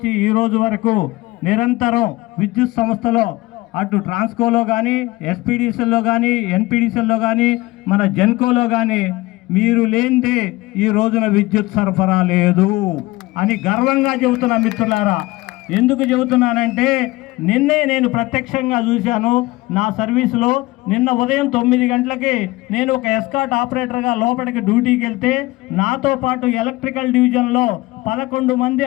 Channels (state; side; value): quieter; right; 20.0 dB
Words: ఈ రోజు వరకు నిరంతరం విద్యుత్ సంస్థలో అటు ట్రాన్స్కోలో కానీ ఎస్పీడీసీల్లో కానీ ఎన్పీడీసీల్లో కానీ మన జెన్కోలో కానీ మీరు లేనిదే ఈ రోజున విద్యుత్ సరఫరా లేదు అని గర్వంగా చెబుతున్నా మిత్రులారా. ఎందుకు చెబుతున్నానంటే నిన్నే నేను ప్రత్యక్షంగా చూశాను. నా సర్వీసులో నిన్న ఉదయం 9 గంటలకి నేను ఒక ఎస్కాట్ ఆపరేటర్గా లోపలికి డ్యూటీకి వెళ్తే నాతో పాటు ఎలక్ట్రికల్ డివిజన్లో 11 మంది